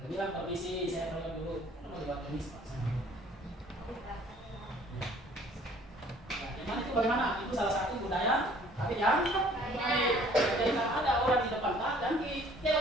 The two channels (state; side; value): normal; both; correlation 0.56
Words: Bilang permisi, saya tolong dulu. Mau dibuat permisi, Pak. Yang mana itu bagaimana? Itu salah satu budaya, tapi yang baik. Jadi kalau ada orang di depan, dan